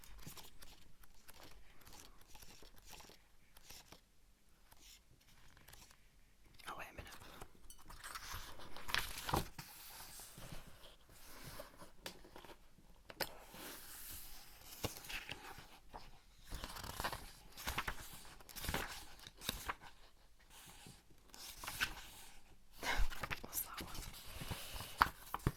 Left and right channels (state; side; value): identical; both; correlation 1.00